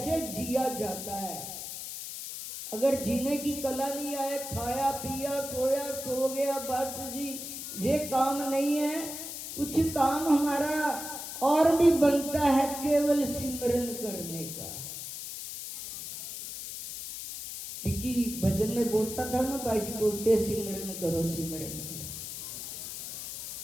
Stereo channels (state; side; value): noise; left; hiss, 8 dB below the sound